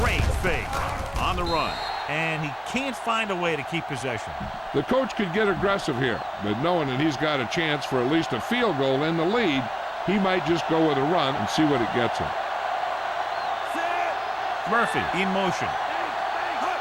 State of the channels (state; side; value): identical; both; correlation 1.00